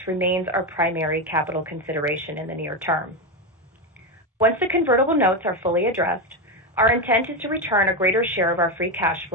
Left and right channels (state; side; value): normal; both; correlation 0.11